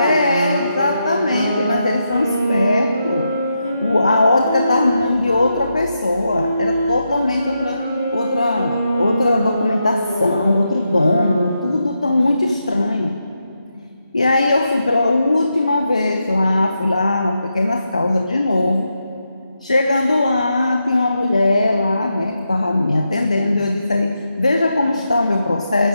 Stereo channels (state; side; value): inverted; both; correlation -0.85